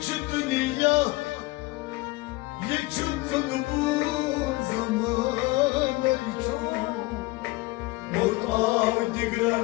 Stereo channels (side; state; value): right; quieter; 21.9 dB